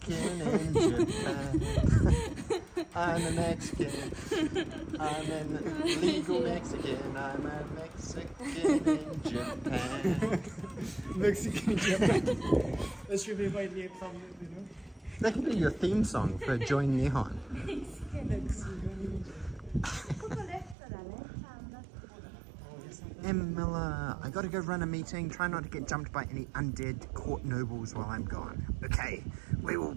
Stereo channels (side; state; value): left; drops out; at 20.8 s